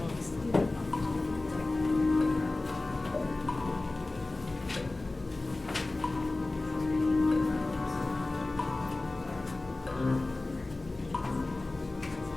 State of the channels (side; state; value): right; quieter; 3.1 dB